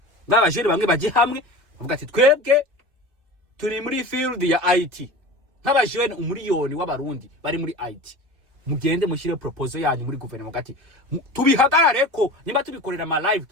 nk'abajene bamwe bajye hamwe bavuga ati twebwe turi muri field ya IT, nk'abajene umuriyoni w'abarundi bari muri IT, mugende mushyire proposal yanyu muri guverinoma gati tubihagarare ko niba tubikorera ama live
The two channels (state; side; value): late; left; 2.5 ms